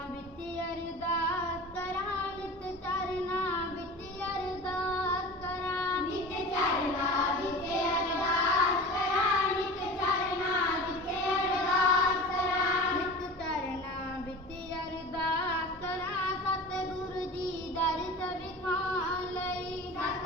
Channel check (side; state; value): both; normal; correlation 0.35